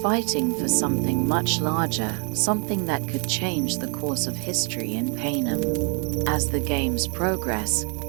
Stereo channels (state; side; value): quieter; left; 37.8 dB